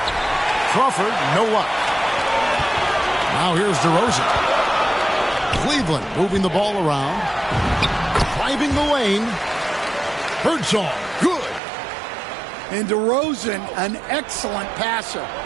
Crawford, no luck. Now here's DeRozan. Cleveland moving the ball around. Driving the lane. Birdsong, good. And DeRozan, an excellent passer,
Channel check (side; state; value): left; drops out; at 11.6 s